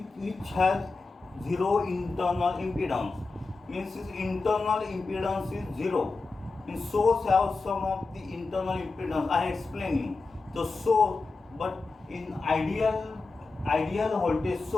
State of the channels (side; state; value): right; quieter; 3.8 dB